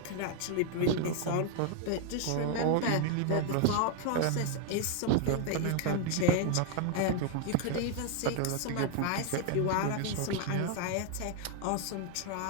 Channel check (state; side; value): different; both; correlation 0.01